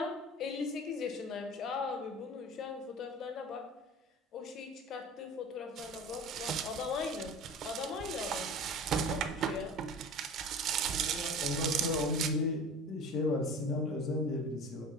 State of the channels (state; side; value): normal; both; correlation 0.38